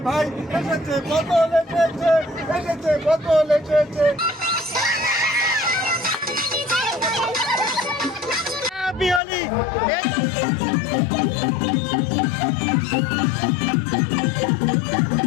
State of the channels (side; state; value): right; drops out; at 9.2 s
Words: ভাই এসেছে বোতল এসেছে বোতল এসেছে। Happy Holi.